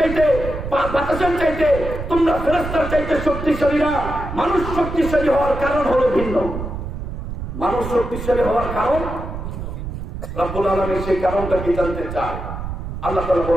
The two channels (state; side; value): noise; right; rumble, 7 dB below the sound